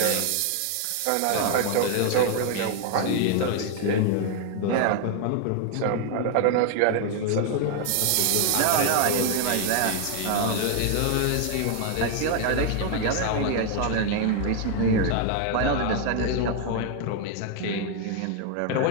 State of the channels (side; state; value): both; different; correlation 0.00